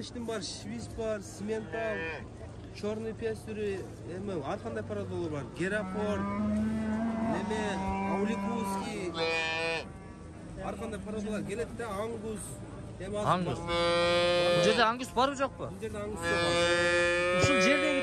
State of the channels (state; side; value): identical; both; correlation 1.00